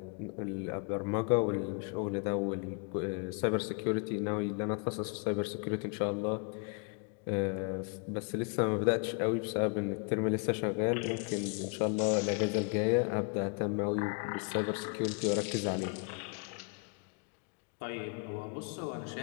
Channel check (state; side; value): quieter; right; 35.4 dB